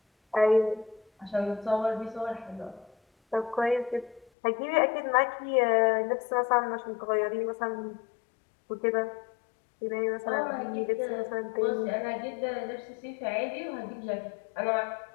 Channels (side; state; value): right; drops out; at 4.3 s